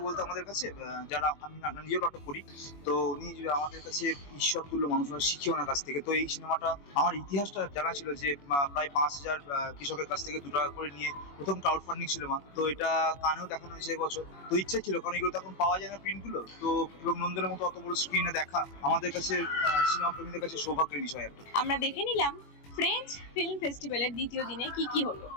বলতে আমাদের কাছে, যারা আমি নিজেও নাটক করি, তো উনি যে আমাদের কাছে ঈশ্বর তুল্য মানুষ, আমরা শিখি ওনার কাছ থেকে। তো এই সিনেমাটা আমার ইতিহাসটা জানা ছিল যে প্রায় 5,000 কৃষকের কাছ থেকে 2 টাকা করে নিয়ে প্রথম ক্রাউড ফান্ডিং সিনেমা, তো এটা কানেও দেখানো হয়েছে এবছর। তো ইচ্ছা ছিল, কারণ এগুলো তো এখন পাওয়া যায় না প্রিন্টগুলো, তো এবং নন্দনের মতো অত বড় স্ক্রিনে দেখা আমাদের কাছে সিনেমা প্রেমীদের কাছে সৌভাগ্যের বিষয় একটা। আমরা দেখে নিলাম ফ্রেঞ্চ ফিল্ম ফেস্টিভ্যালের দ্বিতীয় দিনে কি কি হলো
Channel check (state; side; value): late; right; 21 ms